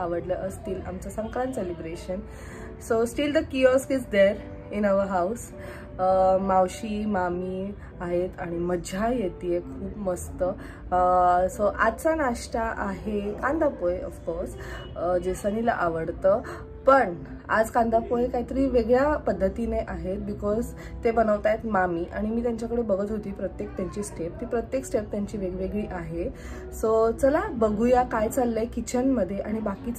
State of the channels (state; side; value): identical; both; correlation 1.00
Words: असतील आमचं Sankrant celebration. So still the kiosk is there in our house. मावशी मामी आहेत आणि मजा येते खूप मस्त. सो आजचा नाश्ता आहे कांदा पोहे ऑफकोर्स, जे सनीला आवडतं. पण आज कांदा पोहे काहीतरी वेगळ्या पद्धतीने आहेत बिकॉज ते बनवत आहेत मामी. आणि मी त्यांच्याकडे बघत होती प्रत्येक त्यांची स्टेप, ती प्रत्येक स्टेप त्यांची वेगवेगळी आहे. सो चला बघूया काय चाललंय किचनमध्ये आणि